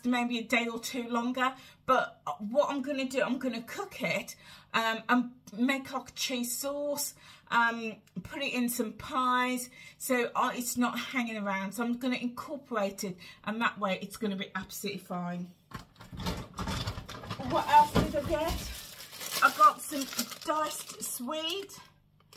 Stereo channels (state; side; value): identical; both; correlation 1.00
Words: maybe a day or 2 longer. But what I'm going to do, I'm going to cook it and make like a cheese sauce, put it in some pies, so it's not hanging around. So I'm going to incorporate it, and that way it's going to be absolutely fine. What else did I get? I got some diced swede,